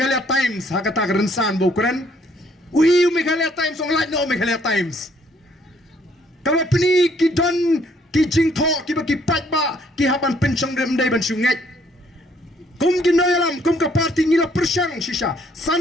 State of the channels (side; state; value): both; normal; correlation 0.65